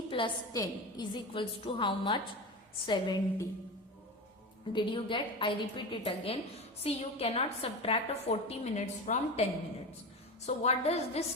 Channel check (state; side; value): normal; both; correlation 0.25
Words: plus 10 is equals to how much? 70. Did you get? I repeat it again. See, you cannot subtract 40 minutes from 10 minutes. So what does this